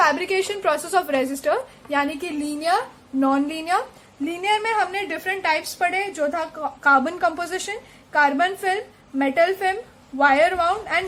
process of resistor, यानी कि लीनियर, नॉन लीनियर. लीनियर में हमने डिफरेंट टाइप्स पढ़े, जो था carbon composition, carbon film, metal film, wire wound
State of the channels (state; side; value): identical; both; correlation 1.00